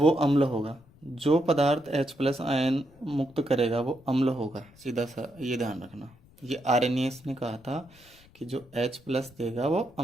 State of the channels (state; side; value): noise; left; rumble, 27 dB below the sound